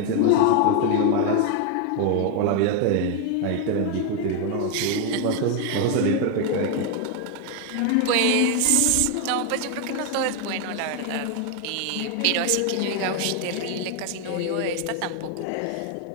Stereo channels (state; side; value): different; both; correlation 0.01